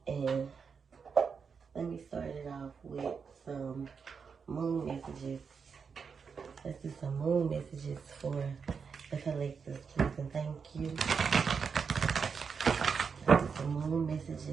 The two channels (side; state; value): left; quieter; 5.9 dB